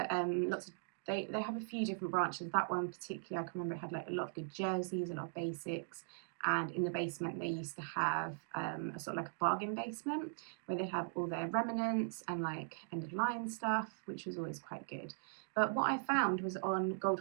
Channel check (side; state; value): left; silent; digital silence